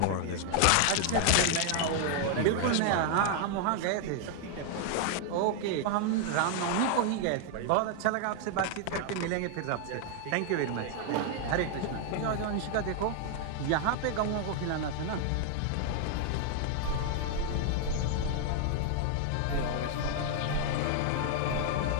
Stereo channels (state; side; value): different; both; correlation 0.00